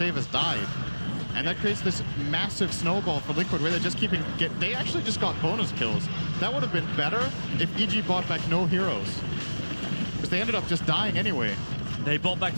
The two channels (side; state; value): both; inverted; correlation -1.00